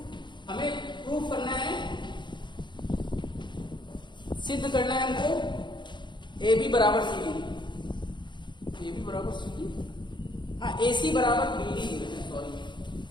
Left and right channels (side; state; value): right; late; 0.22 ms